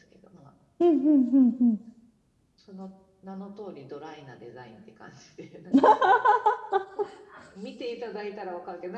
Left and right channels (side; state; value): both; identical; correlation 1.00